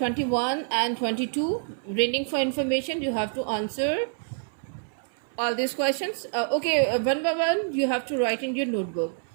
and 22. Reading for information, you have to answer all these questions. One by one, you have to write in your notebook.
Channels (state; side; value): silent; left; 60 dB below the other